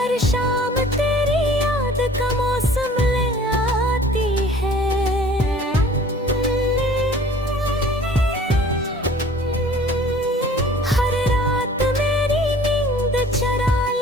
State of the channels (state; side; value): normal; both; correlation 0.49